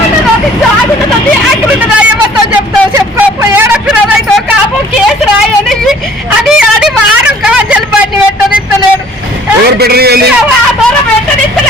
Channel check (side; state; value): both; normal; correlation 0.54